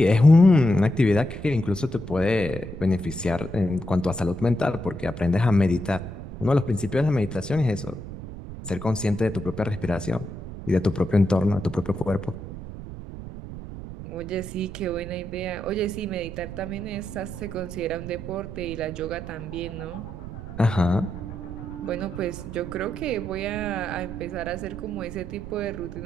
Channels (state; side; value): noise; right; rumble, 10 dB below the sound